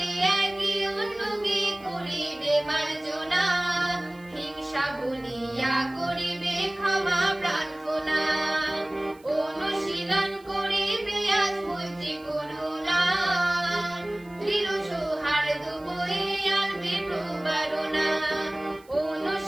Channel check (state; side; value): noise; right; hiss, 28 dB below the sound